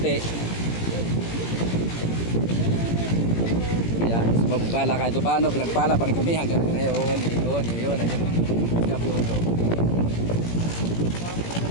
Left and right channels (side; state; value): right; late; 17 ms